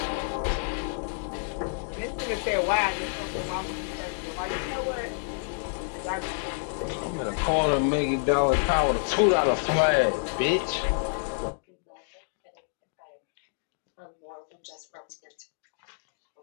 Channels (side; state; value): right; silent; digital silence